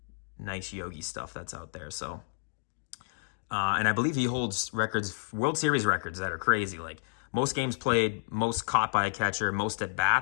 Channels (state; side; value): silent; right; digital silence